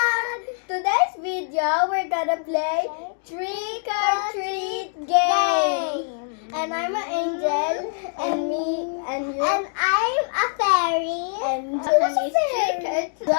Today's video, we're gonna play Trick or Treat game! And I'm an angel, and me, and you. And I'm a fairy. And Johan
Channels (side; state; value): right; silent; 63 dB below the other